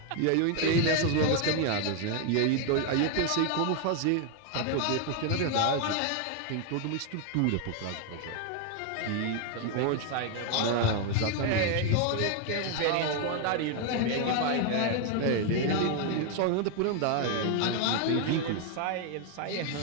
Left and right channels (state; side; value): different; both; correlation 0.00